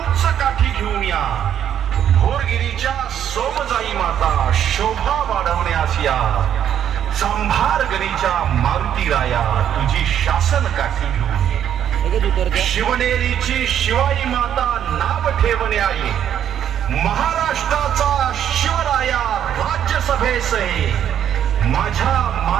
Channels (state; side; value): quieter; left; 9.7 dB